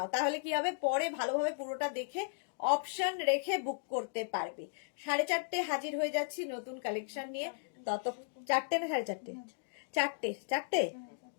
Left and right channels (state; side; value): silent; right; digital silence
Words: তাহলে কি হবে পরে ভালোভাবে পুরোটা দেখে অপশন রেখে বুক করতে পারবে। 4:30 হাজির হয়ে যাচ্ছি নতুন কালেকশন নিয়ে। তত 4টে না 4:30? 4টে।